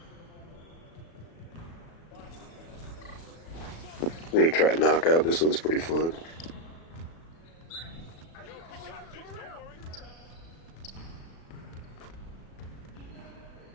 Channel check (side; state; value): right; late; 36 ms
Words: I'm going to try knockout. This one's pretty fun.